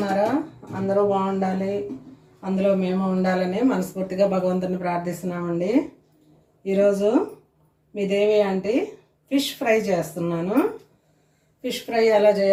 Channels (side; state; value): both; identical; correlation 1.00